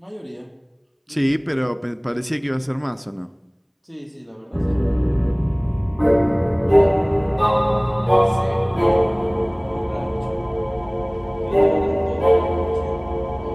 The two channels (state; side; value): identical; both; correlation 1.00